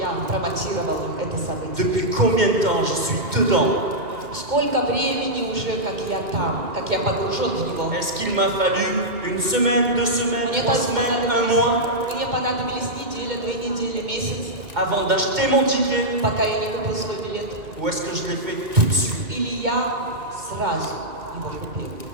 промотировал это событие? Depuis combien de temps je suis dedans? Сколько времени уже, как я там, как я погружен в него? Est-ce qu'il m'a fallu une semaine, 2 semaines, Мне 3 semaines, un mois понадобились неделя, 2 недели, месяц, avant d'acheter mon ticket? пока я не купил свой билет? Ou est-ce que je l'ai fait tout de suite? Или я сразу его купил?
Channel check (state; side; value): late; left; 2.1 ms